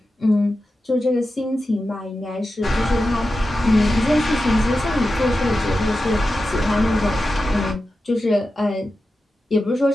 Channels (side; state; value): both; normal; correlation 0.92